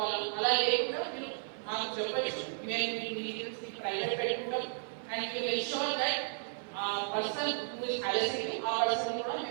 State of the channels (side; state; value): left; silent; digital silence